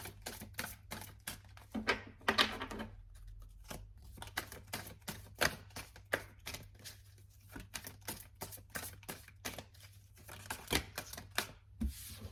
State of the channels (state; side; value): identical; both; correlation 1.00